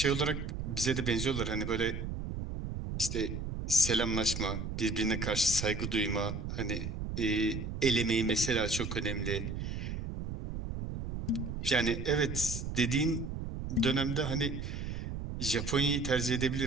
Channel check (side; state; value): right; noise; rumble, 5 dB below the sound